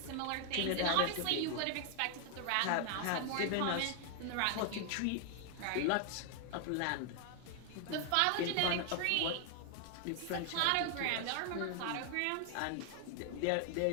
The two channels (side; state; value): both; different; correlation 0.00